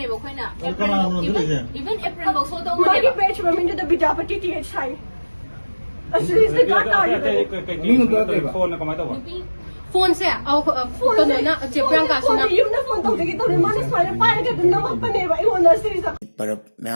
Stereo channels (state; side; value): inverted; both; correlation -1.00